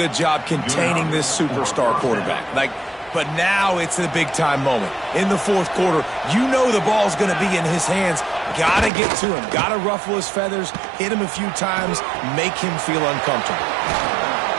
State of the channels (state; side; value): drops out; left; at 8.9 s